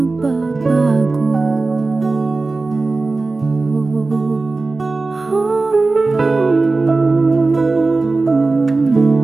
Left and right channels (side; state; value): left; quieter; 3.6 dB